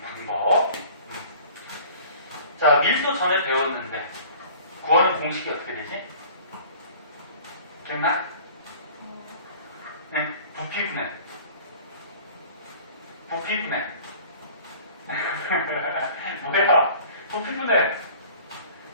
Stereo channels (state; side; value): inverted; both; correlation -0.47